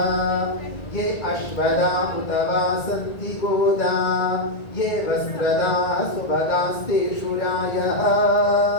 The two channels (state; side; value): late; right; 1.9 ms